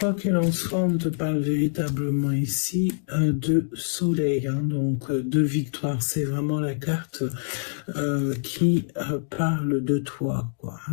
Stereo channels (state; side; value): silent; right; digital silence